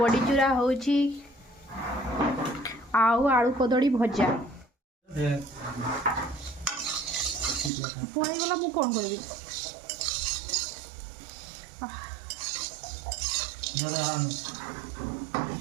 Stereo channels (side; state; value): left; drops out; at 7.7 s